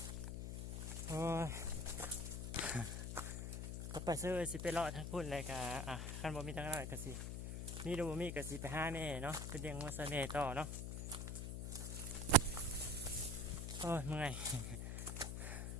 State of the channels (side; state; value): left; noise; hum, 3 dB below the sound